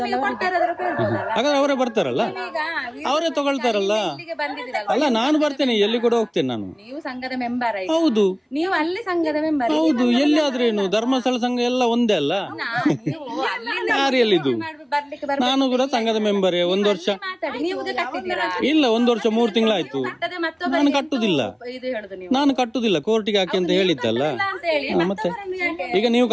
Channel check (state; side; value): identical; both; correlation 1.00